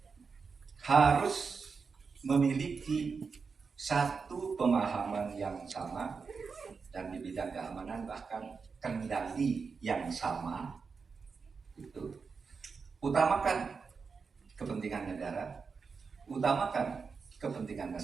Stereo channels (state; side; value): quieter; left; 5.2 dB